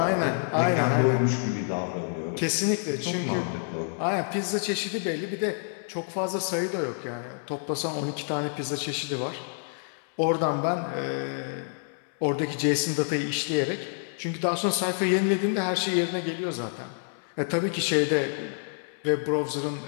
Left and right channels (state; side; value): silent; right; 59 dB below the other